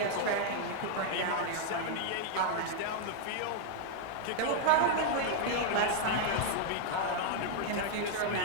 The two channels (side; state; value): both; different; correlation -0.01